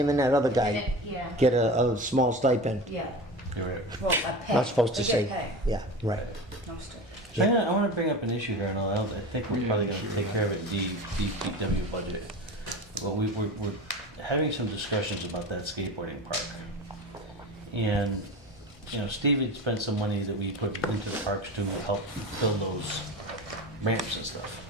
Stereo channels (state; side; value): normal; both; correlation 0.30